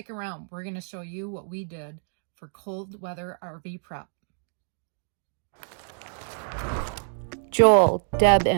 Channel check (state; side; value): silent; left; digital silence